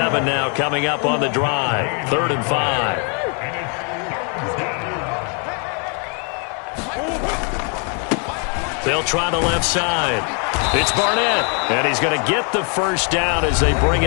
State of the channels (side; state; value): right; quieter; 38.9 dB